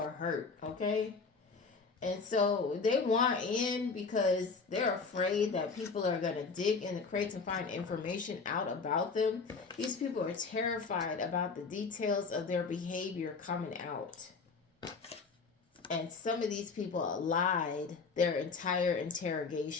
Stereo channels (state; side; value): quieter; right; 4.7 dB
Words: hurt, okay? And so they want in because they're afraid that people are going to dig in the crates and find information out about them. These people are terrified about the details of their behavior coming out. And some of these people lied their entire